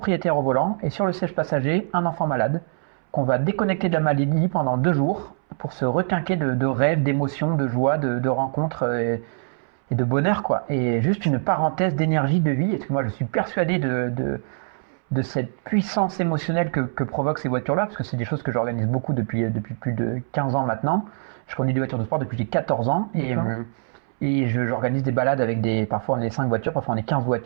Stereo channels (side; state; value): left; silent; 63 dB below the other